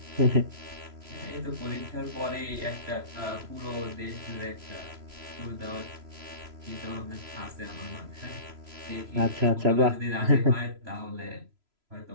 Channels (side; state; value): left; late; 3.0 ms